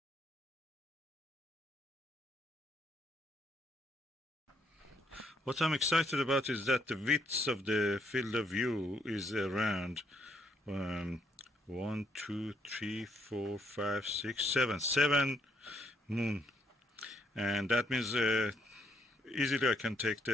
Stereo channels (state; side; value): normal; both; correlation 0.72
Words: What I'm excited about is that the width of the field of view is around 1, 2, 3, 4, 5, 6, 7 moon, and that means easily I can take